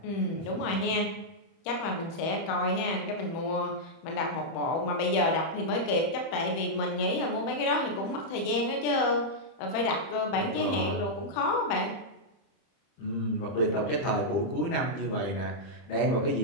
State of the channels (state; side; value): late; right; 30 ms